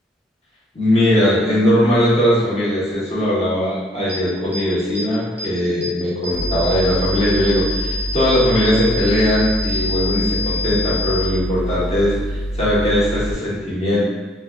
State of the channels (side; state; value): both; normal; correlation 0.62